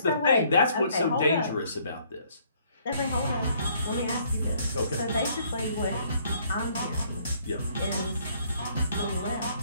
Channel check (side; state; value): both; inverted; correlation -0.64